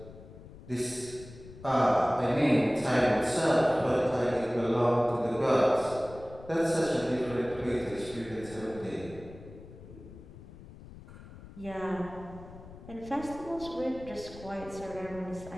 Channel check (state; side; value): noise; left; rumble, 17 dB below the sound